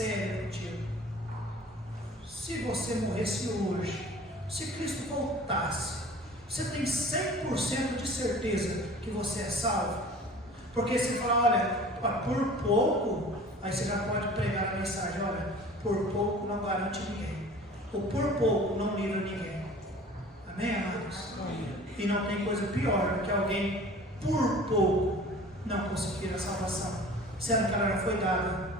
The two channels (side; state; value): both; normal; correlation 0.44